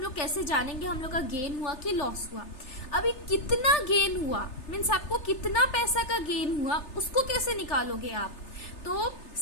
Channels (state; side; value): late; right; 3.3 ms